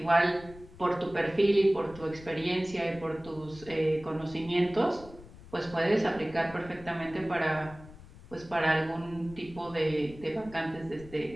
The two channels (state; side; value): noise; left; rumble, 19 dB below the sound